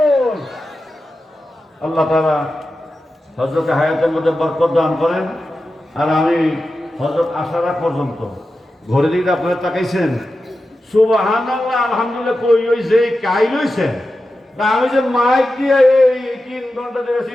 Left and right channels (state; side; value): normal; both; correlation 0.92